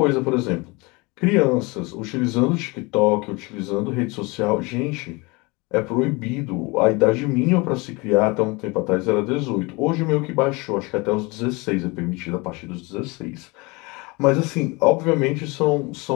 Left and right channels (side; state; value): right; quieter; 25.9 dB